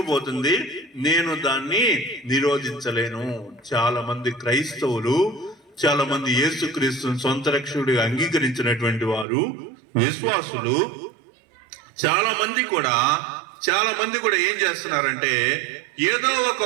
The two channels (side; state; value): left; drops out; at 9.2 s